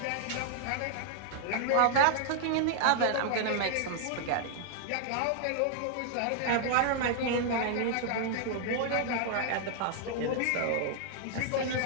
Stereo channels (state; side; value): different; both; correlation 0.00